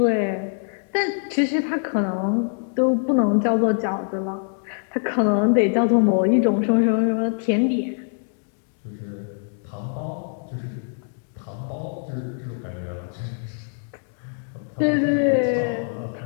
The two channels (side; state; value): right; silent; digital silence